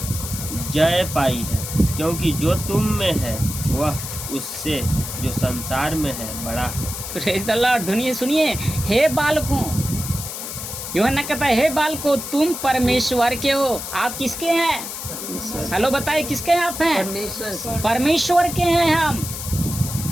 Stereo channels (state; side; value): noise; left; hiss, 7 dB below the sound